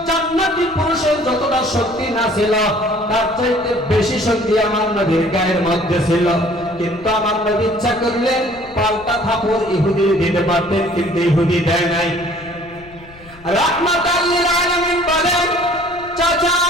জান্নাতি পুরুষের যতটা শক্তি না ছিল তার চাইতে বেশি শক্তি আমার নবীর গায়ের মধ্যে ছিল। কিন্তু আমার নবী ইচ্ছা করলে পাল্টা থাপড় ইহুদি দিতে পারতেন, কিন্তু ইহুদি দেয় নাই। রাহমাতাল লিল আলামিন বলেন, চাচা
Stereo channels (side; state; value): left; noise; rumble, 22 dB below the sound